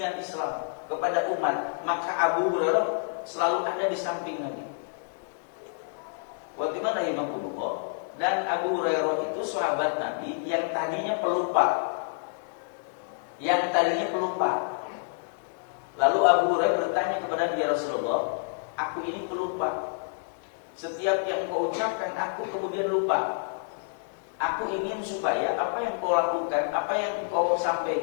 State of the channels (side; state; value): right; silent; digital silence